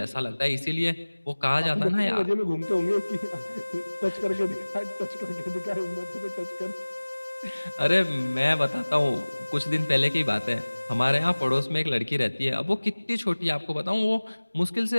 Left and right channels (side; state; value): both; inverted; correlation -1.00